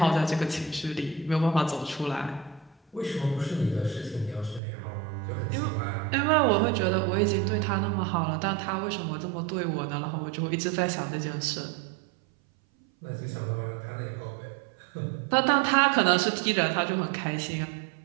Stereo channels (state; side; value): drops out; left; at 4.6 s